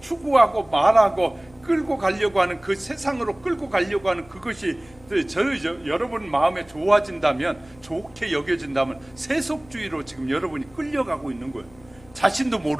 말하고 끌고 가려고 하는 그 세상으로 끌고 가려고 하는 그것이 여러분 마음에 좋아진다면, 좋게 여겨진다면 세속주의로 지금 여러분이 끌려가고 있는 거예요. 자신도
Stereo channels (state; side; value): noise; left; hum, 25 dB below the sound